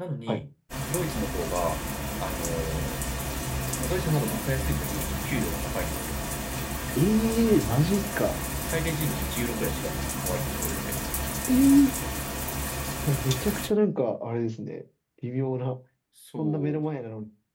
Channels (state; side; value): identical; both; correlation 1.00